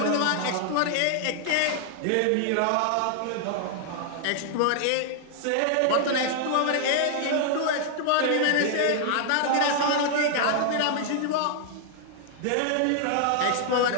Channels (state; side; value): different; both; correlation 0.00